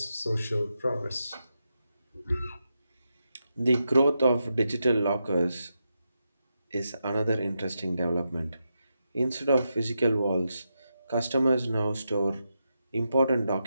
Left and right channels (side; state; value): both; inverted; correlation -0.86